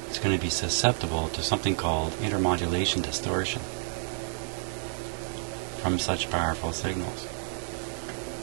is going to be susceptible to something called intermodulation distortion from such powerful signals.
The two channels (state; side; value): silent; left; digital silence